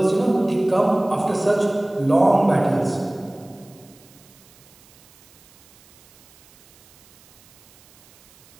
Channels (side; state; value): right; noise; hiss, 28 dB below the sound